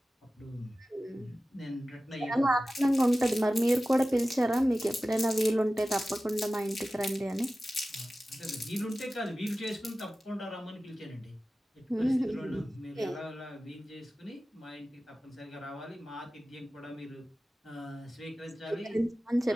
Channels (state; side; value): normal; both; correlation 0.95